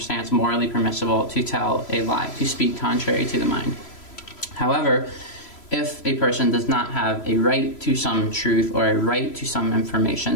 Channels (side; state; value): right; late; 3.0 ms